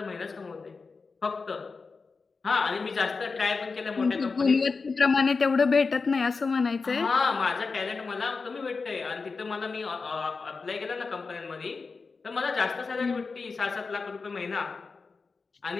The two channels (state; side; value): quieter; right; 4.5 dB